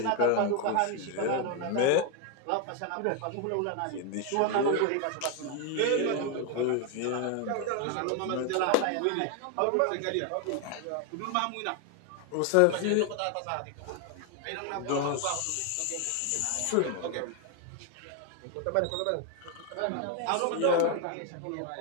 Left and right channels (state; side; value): different; both; correlation 0.01